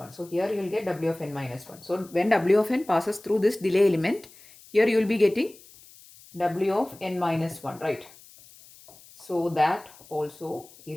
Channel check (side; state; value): left; noise; hiss, 23 dB below the sound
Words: So here you will get w of n minus 1. So when w of n passes through this delay element, here you will be getting w of n minus 1, right? So that also